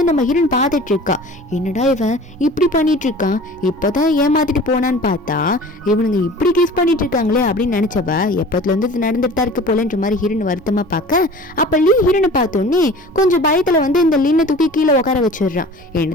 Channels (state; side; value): normal; both; correlation 0.42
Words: நம்ம ஹீரோன் பார்த்துட்டு இருக்கா, என்னடா இவன் இப்படி பண்ணிட்டு இருக்கான், இப்பதான் ஏமாத்திட்டு போனான்னு பார்த்தா இவனுங்க இப்படி கிஸ் பண்ணிட்டு இருக்காங்களே அப்படின்னு நினைச்சவ எப்பத்துல இருந்து நடந்துட்டு தான் இருக்கு போலன்ற மாதிரி ஹீரோன் வருத்தமா பார்க்க. அப்ப லீ ஹீரோனை பார்த்தோன்னே கொஞ்சம் பயத்துல வந்து இந்த லின்னை தூக்கி கீழே உட்கார வச்சிடுறான்.